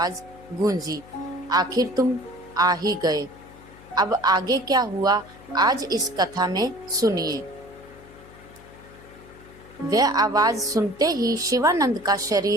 गूंजी, आखिर तुम आ ही गए। अब आगे क्या हुआ, आज इस कथा में सुनिए। वह आवाज सुनते ही शिवानंद का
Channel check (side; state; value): left; noise; hum, 21 dB below the sound